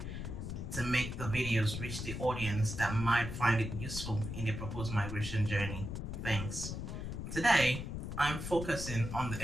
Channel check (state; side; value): noise; left; rumble, 5 dB below the sound